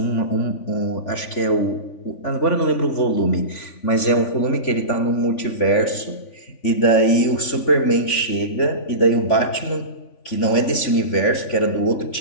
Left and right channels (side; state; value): right; late; 3.5 ms